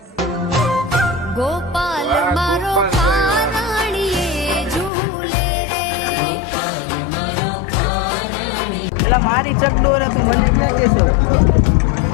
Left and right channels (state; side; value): drops out; right; at 4.9 s